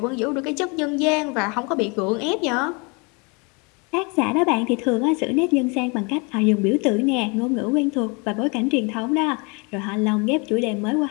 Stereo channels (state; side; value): quieter; right; 30.9 dB